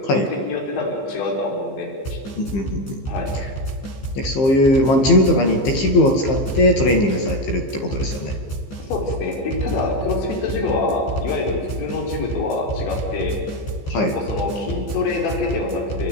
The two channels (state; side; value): late; right; 15 ms